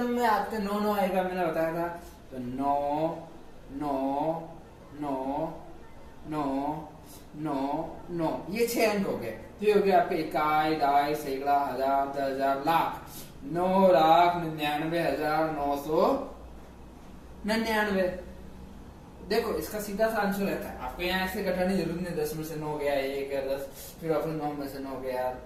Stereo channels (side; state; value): both; identical; correlation 1.00